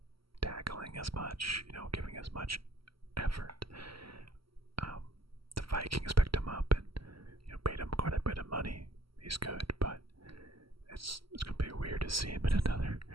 tackling as much, giving as much effort. The Vikings picked him up and paid him quite a bit of money. He's good, but it's gonna be weird to see him in another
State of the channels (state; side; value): late; left; 0.75 ms